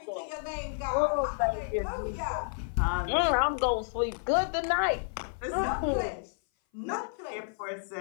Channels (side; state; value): right; silent; 57 dB below the other